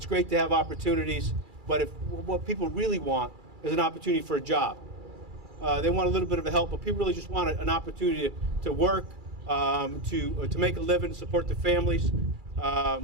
great to have opportunities, but if what people really want is an opportunity for a job. They want a little bit of a help, but people really just want an opportunity to work, to make a living, support their families.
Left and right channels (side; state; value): left; late; 2.3 ms